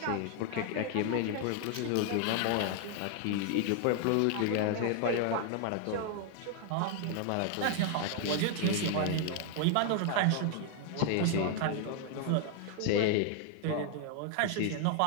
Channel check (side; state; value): both; different; correlation 0.00